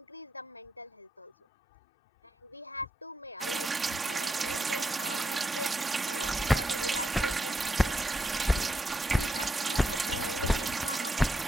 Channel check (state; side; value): normal; both; correlation 0.83